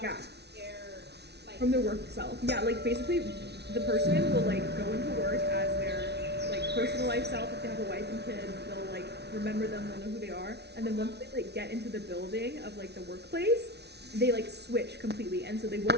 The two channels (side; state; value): left; late; 0.49 ms